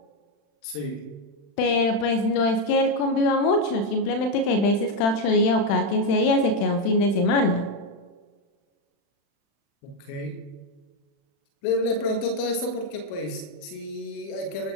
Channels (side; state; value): right; late; 36 ms